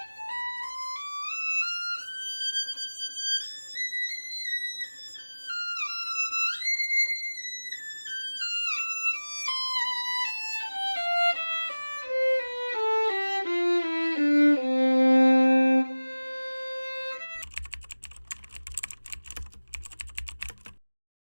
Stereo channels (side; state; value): both; inverted; correlation -1.00